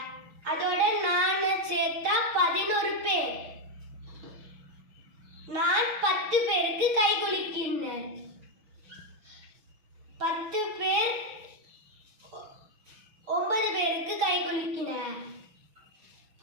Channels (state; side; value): late; left; 6.1 ms